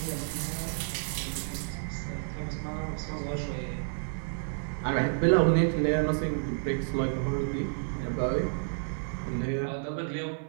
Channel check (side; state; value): left; silent; 58 dB below the other